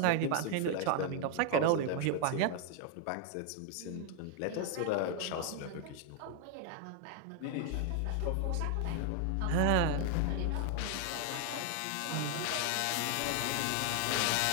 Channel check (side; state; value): both; different; correlation 0.00